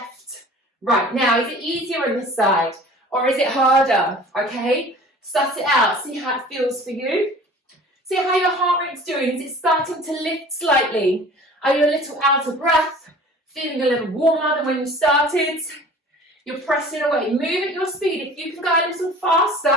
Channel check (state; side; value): normal; both; correlation 0.45